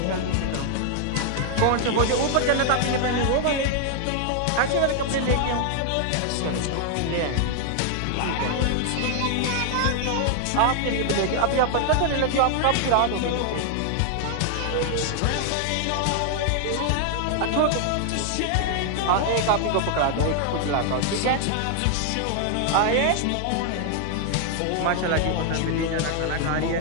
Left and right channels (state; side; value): different; both; correlation 0.00